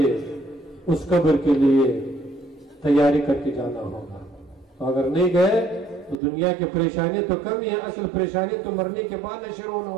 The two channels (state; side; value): drops out; left; at 6.2 s